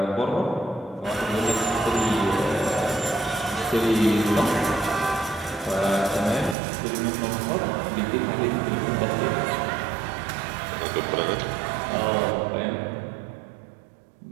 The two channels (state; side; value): drops out; left; at 6.6 s